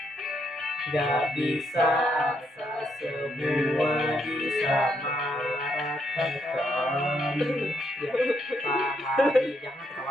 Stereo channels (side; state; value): both; normal; correlation 0.76